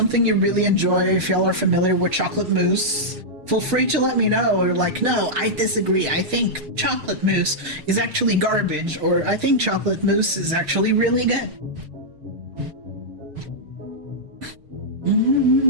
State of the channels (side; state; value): left; late; 6.5 ms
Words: you really enjoy, if y'all are familiar with chocolate mousse, feel free to let me know. Or like, no, I disagree. I think chocolate mousse is actually garbage, or I think chocolate mousse is actually really good.